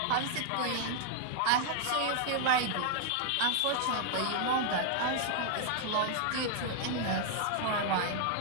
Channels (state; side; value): different; both; correlation 0.00